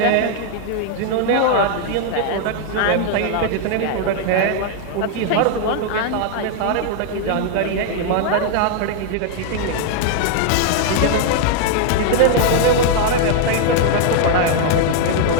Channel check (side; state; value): both; different; correlation 0.00